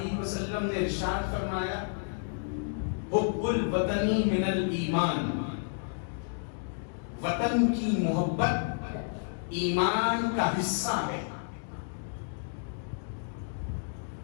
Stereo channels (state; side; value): silent; right; digital silence